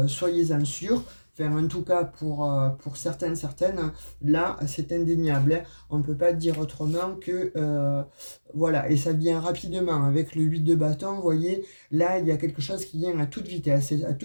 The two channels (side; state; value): both; inverted; correlation -1.00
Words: soyez-en sûrs. Enfin, en tout cas, pour certaines, là, c'est indéniable, hein. On ne peut pas dire autrement que... voilà, et ça vient rapidement. Avec le 8 de bâton, vous voyez, là, il y a quelque chose qui vient à toute vitesse. Et à